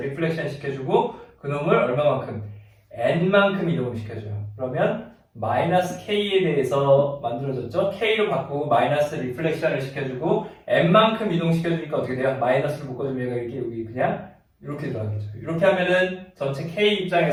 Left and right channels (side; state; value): both; identical; correlation 1.00